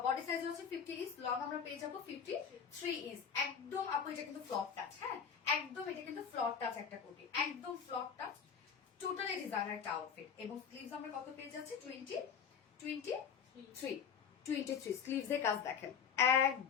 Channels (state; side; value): quieter; right; 7.1 dB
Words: বডি সাইজ হচ্ছে 50 ইঞ্চ, লং আমরা পেয়ে যাবো 53 ইঞ্চ। একদম আপু এটা কিন্তু ফ্লপ টাচ, হ্যাঁ একদম এটা কিন্তু ফ্লপ টাচ একটা কোটি, একদম ফ্লপ টাচ, টোটালি ডিজাইনার একটা আউটফিট। এবং স্লিভস আমরা কত পেয়ে যাচ্ছি 23 স্লিভস এর কাজ দেখেন